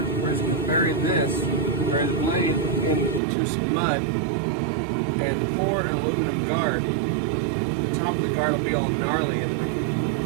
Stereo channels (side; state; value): left; drops out; at 3.2 s